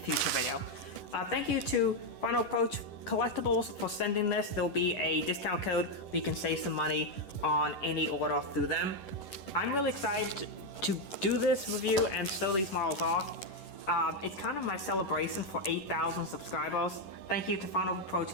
video. Thank you to Final Approach Collectibles for sending this. There will be a discount code where you can save some money on any order through them. I'm really excited to do this review and show these models off. It's kind of my celebration for 8,000 subscribers. Thank you to Final Approach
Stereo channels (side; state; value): right; late; 11 ms